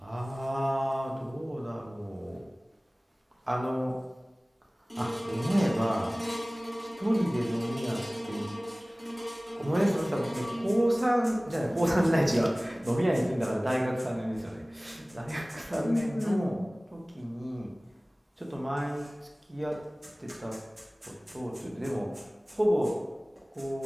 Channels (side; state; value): both; normal; correlation 0.98